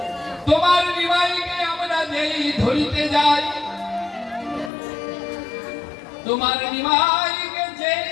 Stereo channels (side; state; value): right; drops out; at 4.7 s